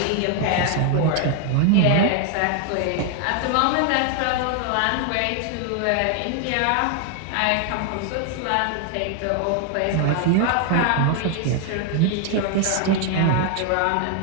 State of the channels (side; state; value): both; different; correlation 0.00